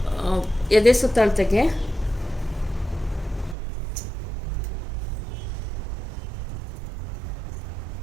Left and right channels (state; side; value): drops out; left; at 3.6 s